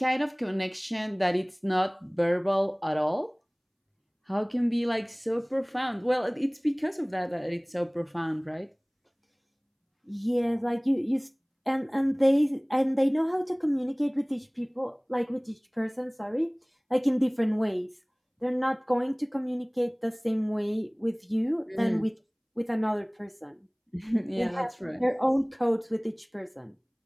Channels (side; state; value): both; identical; correlation 1.00